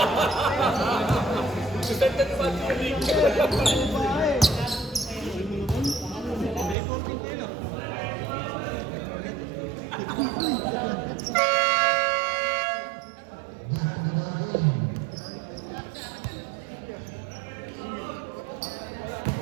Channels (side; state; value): left; drops out; at 6.8 s